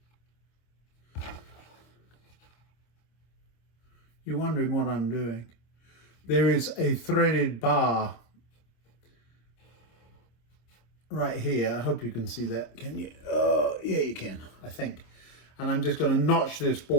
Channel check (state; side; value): late; right; 26 ms